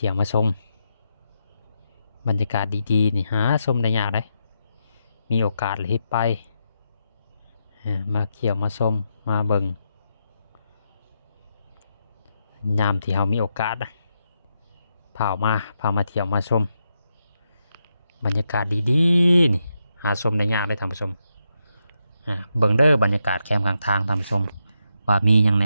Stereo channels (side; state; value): both; inverted; correlation -0.84